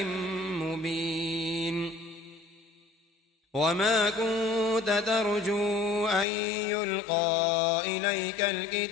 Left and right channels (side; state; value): right; drops out; at 6.2 s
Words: مبين وما كنت ترجو أن يلقى إليك